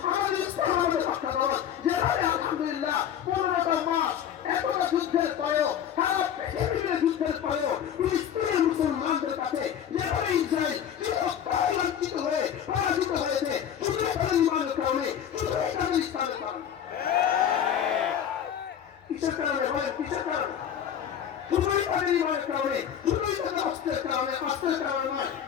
আমাদের ইসলাম আমাদের রক্ষা কবচ। যেভাবে আলহামদুলিল্লাহ 15টা মাস এতটা যুদ্ধের পরেও, সারা পৃথিবীর যুদ্ধের পরেও ফিলিস্তিনের মুসলমানদের কাছে যেভাবে ইসরায়েল চিরস্থায়ী লাঞ্ছিত হয়ে পরাজিত হয়েছে, শুধু তাদের ইমানের কারণে, শুধু তাদের ইসলামের কারণে। কিসের কারণে বলেন? কিসের কারণে? শুধুই তাদের ইমানের কারণে, শুধুই তাদের অস্ত্রের কারণে। অস্ত্রের কারণে নয়।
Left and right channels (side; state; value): right; quieter; 9.3 dB